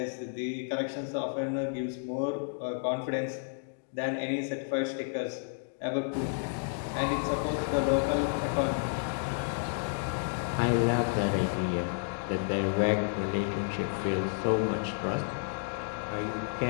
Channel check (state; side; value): silent; right; digital silence